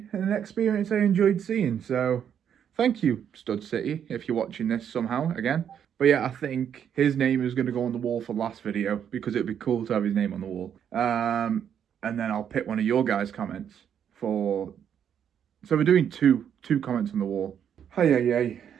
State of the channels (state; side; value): quieter; left; 8.7 dB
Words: and an experience I enjoyed seeing. So thank you, Stud City, if you're watching this somehow again. But yeah, I think his name is going to go on the wall for last video because it'd be cool to have his name on the wall. And then I'll pick one of your guys' comments for... So we're doing two comments on the wall. Hey.